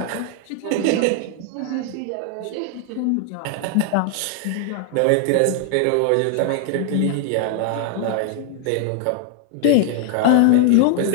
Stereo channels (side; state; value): both; different; correlation 0.00